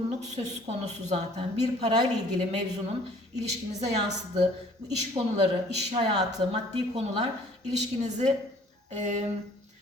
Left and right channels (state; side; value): normal; both; correlation 0.55